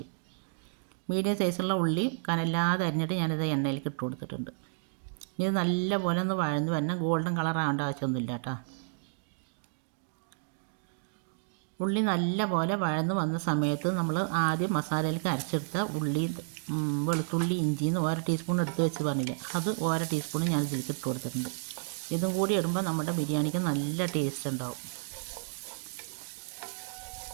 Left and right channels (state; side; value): silent; left; digital silence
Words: മീഡിയം സൈസുള്ള ഉള്ളി കനല്ലാതെ അരിഞ്ഞിട്ട് ഞാനിത് എണ്ണയിലേക്ക് ഇട്ട് കൊടുത്തിട്ടുണ്ട്. ഇത് നല്ലപോലെ ഒന്ന് വഴന്ന് വരണം. ഗോൾഡൻ കളർ ആവേണ്ട ആവശ്യമൊന്നുമില്ല കേട്ടോ. ഉള്ളി നല്ലപോലെ വഴന്ന് വന്ന സമയത്ത് നമ്മൾ ആദ്യം മസാലയിലേക്ക് അരച്ചെടുത്ത ഉള്ളി, വെളുത്തുള്ളി, ഇഞ്ചിന്ന് 1 ടീസ്പൂൺ എടുത്ത് വെച്ച് പറഞ്ഞില്ലേ, അത് 1 ടീസ്പൂൺ ഞാൻ ഇതിലേക്ക് ഇട്ട് കൊടുത്തിട്ടുണ്ട്. ഇതും കൂടി ഇടുമ്പോൾ നമ്മുടെ ബിരിയാണിക്ക് നല്ല ടേസ്റ്റ് ഉണ്ടാവും.